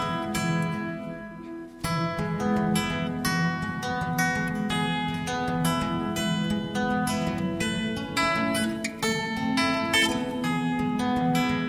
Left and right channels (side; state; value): both; identical; correlation 1.00